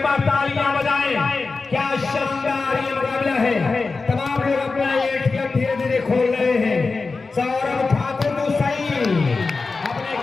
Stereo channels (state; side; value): quieter; right; 4.1 dB